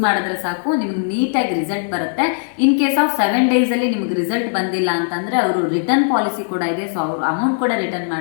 ಮಾಡಿದ್ರೆ ಸಾಕು, ನಿಮ್ಗೆ ನೀಟಾಗಿ ರಿಸಲ್ಟ್ ಬರುತ್ತೆ. ಇನ್ ಕೇಸ್ ಆಫ್ 7 ಡೇಸಲ್ಲಿ ನಿಮ್ಗೆ ರಿಸಲ್ಟ್ ಬಂದಿಲ್ಲ ಅಂತಂದರೆ ಅವರು ರಿಟರ್ನ್ ಪಾಲಿಸಿ ಕೂಡ ಇದೆ. ಸೊ ಅವರು ಅಮೌಂಟ್ ಕೂಡ ರಿಟರ್ನ್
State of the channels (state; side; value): silent; right; digital silence